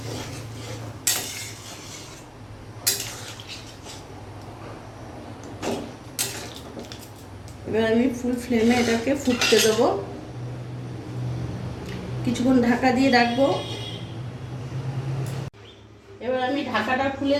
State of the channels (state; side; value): identical; both; correlation 1.00